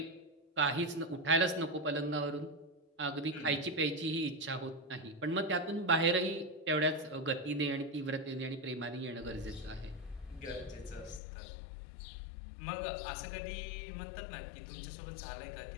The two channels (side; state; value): right; drops out; at 11.2 s